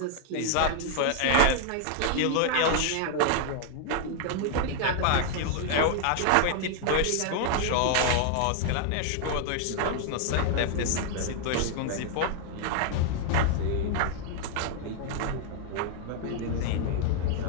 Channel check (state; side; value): different; both; correlation 0.00